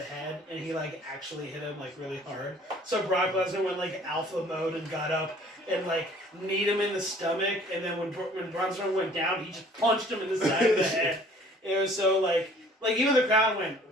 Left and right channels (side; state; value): both; normal; correlation 0.54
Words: head, and he like actually hit him like really hard. So Brock Lesnar went like alpha mode and got up and like kneed him in the stomach, and then when Braun Strowman went down, he just punched him in the side of the head. It was so like even the crowd went